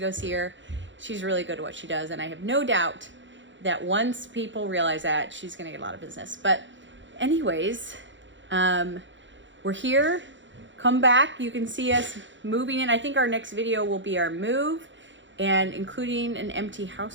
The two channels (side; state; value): left; late; 0.54 ms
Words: see her. She's really good at what she does. And I have no doubt that once people realize that, she's going to get a lot of business. But anyways, we're here. Come back. You can see us moving in. I think our next video will be our move and including an empty